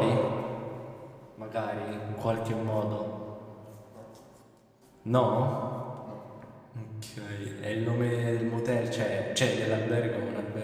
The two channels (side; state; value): both; identical; correlation 1.00